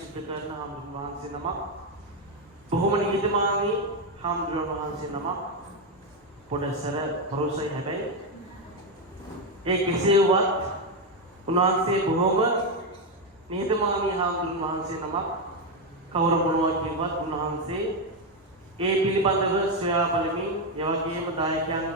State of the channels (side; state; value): both; normal; correlation 0.07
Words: කරන හාමුදුරුවෝ වහන්සේ නමක්. බොහොම නිහතමානී හාමුදුරුවෝ වහන්සේ නමක්. පොඩසර පරුසයි හැබැයි ඒ කෙසේවත් උන්වහන්සේ බොහොම නිහතමානී හාමුදුරුවෝ වහන්සේ නමක්. කවුරු මොනවා කියවත් උන්වහන්සේ ඒ පිළිබඳව සොයා බලමින් ඒ වගේම